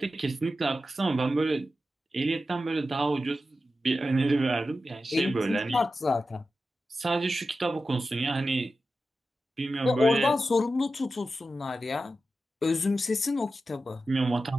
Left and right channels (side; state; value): both; normal; correlation 0.92